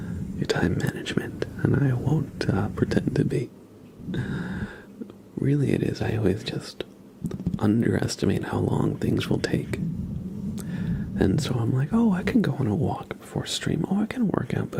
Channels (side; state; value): both; identical; correlation 1.00